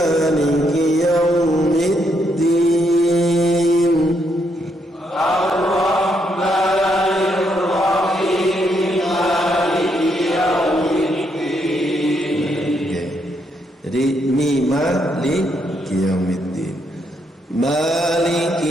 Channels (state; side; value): normal; both; correlation 0.76